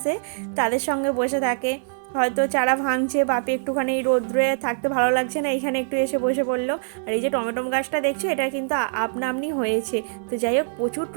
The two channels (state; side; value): silent; left; 61 dB below the other